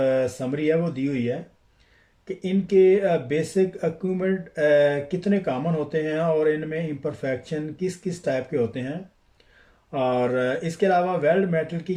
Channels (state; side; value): identical; both; correlation 1.00